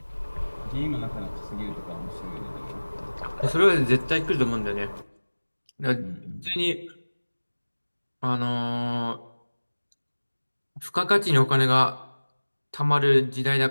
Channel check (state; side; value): inverted; both; correlation -1.00